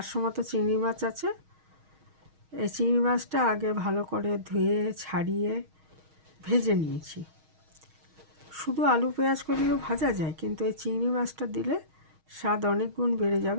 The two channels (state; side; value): late; left; 6.4 ms